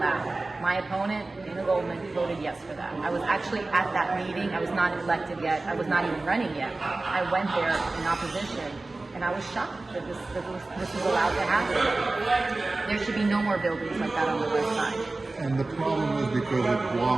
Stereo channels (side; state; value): left; quieter; 3.2 dB